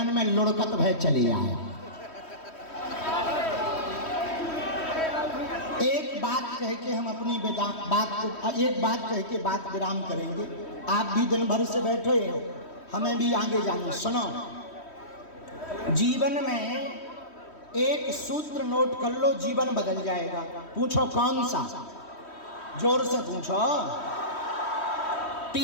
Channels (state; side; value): late; right; 3.1 ms